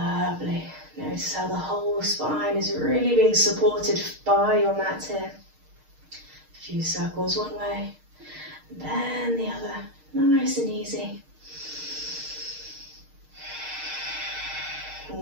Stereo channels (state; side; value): late; left; 6.5 ms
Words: Notice how the whole spine is really being supported by your mat here. A few circles one way, and then the other. Nice and easy.